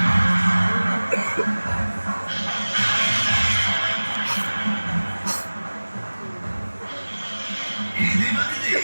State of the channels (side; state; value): both; inverted; correlation -1.00